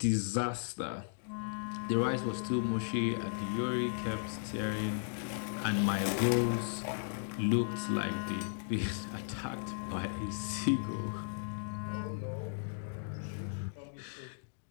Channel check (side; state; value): right; silent; digital silence